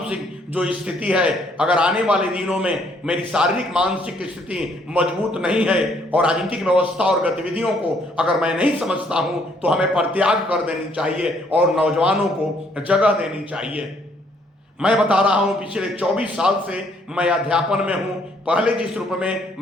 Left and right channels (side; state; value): both; normal; correlation 0.67